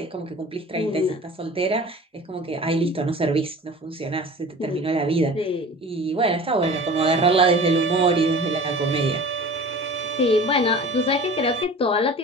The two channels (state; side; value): normal; both; correlation 0.40